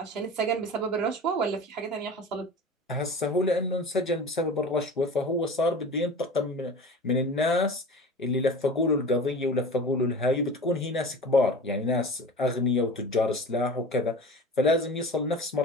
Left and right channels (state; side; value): normal; both; correlation 0.36